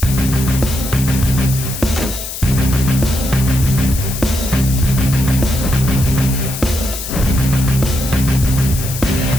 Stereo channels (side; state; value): left; noise; hiss, 8 dB below the sound